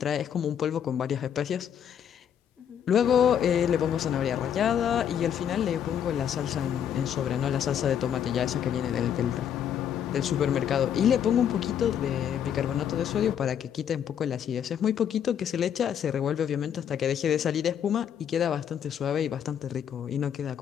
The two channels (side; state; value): right; quieter; 9.0 dB